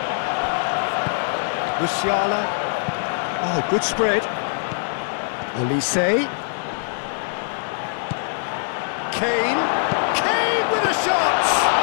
Musiala. Oh, good spread. Olise. Kane. Kane with a shot!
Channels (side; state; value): right; silent; digital silence